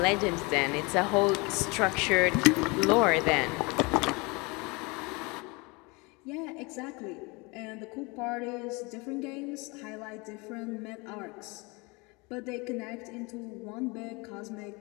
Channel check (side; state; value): right; quieter; 27.3 dB